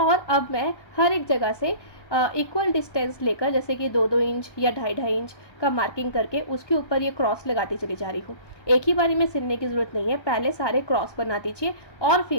अब मैं हर एक जगह से इक्वल डिस्टेंस लेकर, जैसे कि 2-2 इंच या 2.5-2.5 इंच का मार्किंग करके उसके ऊपर ये क्रॉस लगाती चली जा रही हूँ। एक ही बारी में सिलने की ज़रूरत नहीं है, पहले सारे क्रॉस बना दीजिए और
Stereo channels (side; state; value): right; late; 1.1 ms